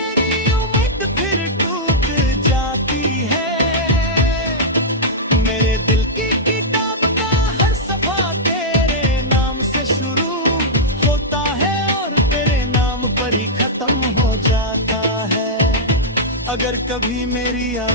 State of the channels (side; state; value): both; normal; correlation -0.09